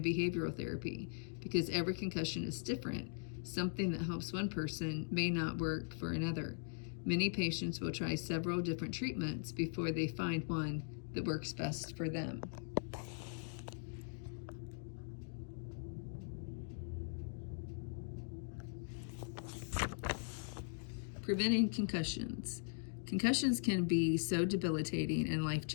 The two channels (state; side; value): silent; right; digital silence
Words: behavioral therapy. Because every concussion is different, something that helps one person may not work for another. Many patients will try several different treatments before they find one that works best for them. Preventing concussions. Concussions can be so debilitating and